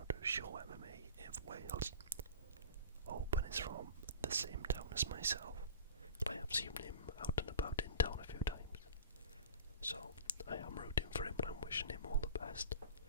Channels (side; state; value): both; inverted; correlation -0.37